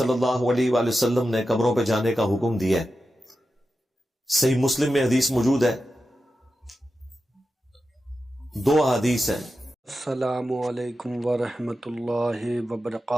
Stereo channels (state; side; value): normal; both; correlation 0.91